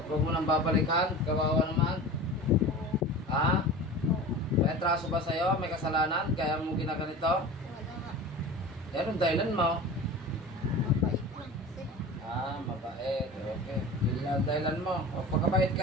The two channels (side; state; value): both; normal; correlation 0.35